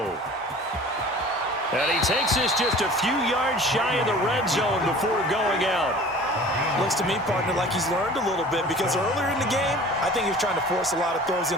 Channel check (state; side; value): normal; both; correlation 0.44